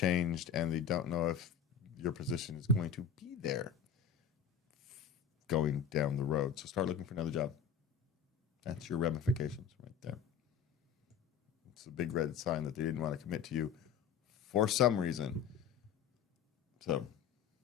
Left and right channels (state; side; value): quieter; right; 7.3 dB